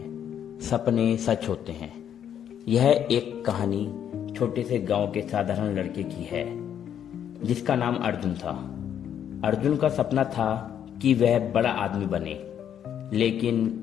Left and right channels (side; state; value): right; quieter; 9.4 dB